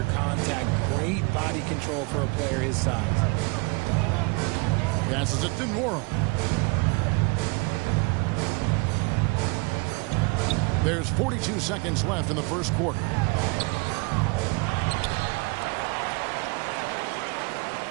contact. Great body control for a player his size. Passes it to Nwora. There's 42 seconds left in the first quarter.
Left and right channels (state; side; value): quieter; left; 29.5 dB